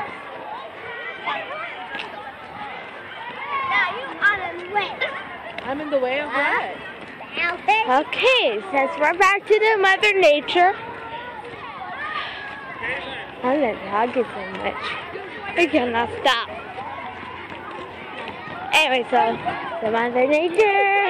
I'm in the way of what? Okay, since we're back to the Mother Nature, I'm not talking so much. I cannot stop. Anyway, so the Mother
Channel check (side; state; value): both; identical; correlation 1.00